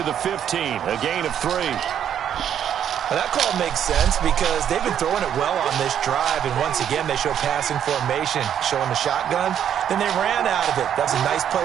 the 15. A gain of 3. Now that call makes sense because they've been throwing it well on this drive. And once again, they show passing formation, showing the shotgun. Then they ran out of it. That's a nice play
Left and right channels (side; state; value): left; quieter; 9.4 dB